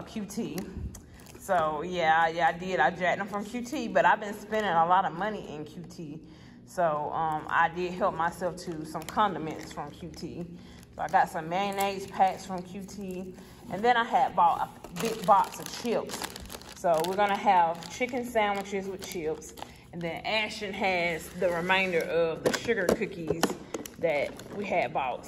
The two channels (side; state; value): both; identical; correlation 1.00